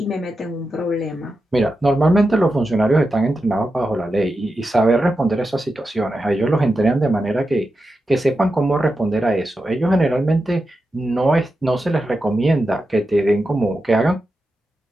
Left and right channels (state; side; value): normal; both; correlation 0.89